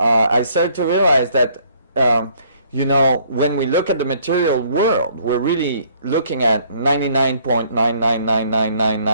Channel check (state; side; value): inverted; both; correlation -0.62